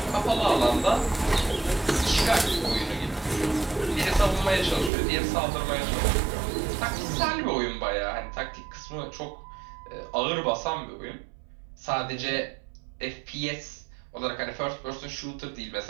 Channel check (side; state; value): left; drops out; at 4.9 s